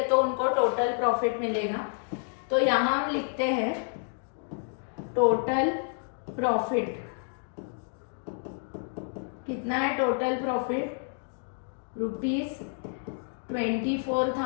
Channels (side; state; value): right; silent; 58 dB below the other